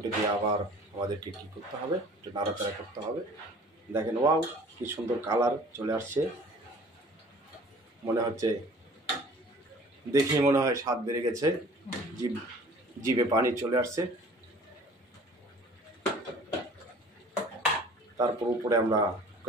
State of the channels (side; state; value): both; normal; correlation 0.48